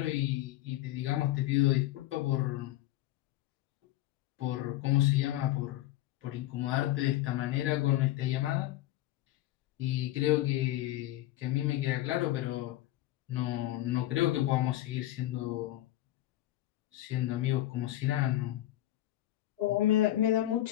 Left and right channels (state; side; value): quieter; right; 14.7 dB